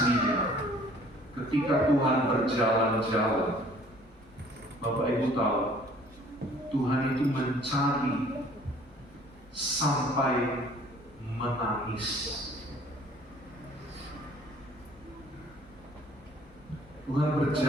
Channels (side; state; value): both; normal; correlation 0.54